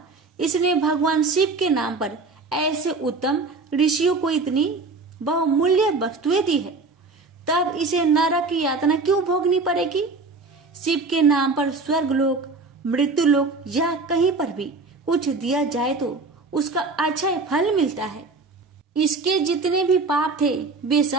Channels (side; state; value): left; quieter; 3.9 dB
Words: इसने भगवान शिव के नाम पर ऐसे उत्तम ऋषियों को इतनी बहुमूल्य वस्तुएं दी है, तब इसे नरक की यातना क्यों भोगनी पड़ेगी? शिव के नाम पर स्वर्गलोक, मृत्युलोक या कहीं पर भी कुछ दिया जाए तो उसका अच्छा फल मिलता है। इसके जितने भी पाप थे वे